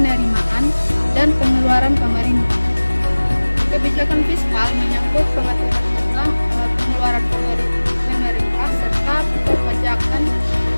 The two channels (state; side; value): inverted; both; correlation -1.00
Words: dan pengeluaran pemerintah. Kebijakan fiskal menyangkut pengaturan tentang pengeluaran pemerintah serta perpajakan